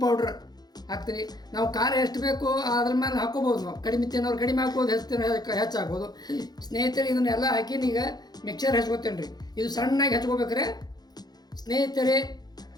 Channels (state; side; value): late; right; 0.19 ms